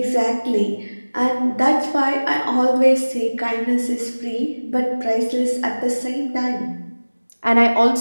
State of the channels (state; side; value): inverted; both; correlation -1.00